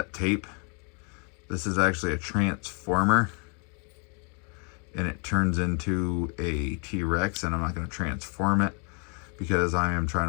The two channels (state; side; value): quieter; right; 37.2 dB